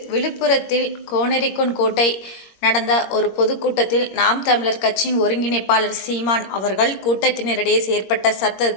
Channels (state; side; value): late; right; 21 ms